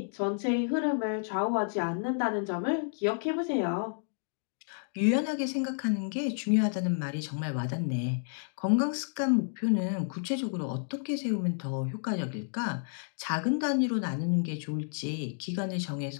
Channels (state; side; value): silent; right; digital silence